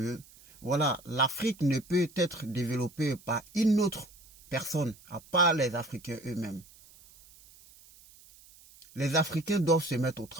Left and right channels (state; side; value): noise; right; hiss, 24 dB below the sound